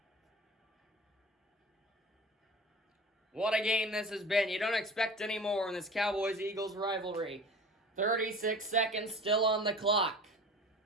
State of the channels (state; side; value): normal; both; correlation 0.38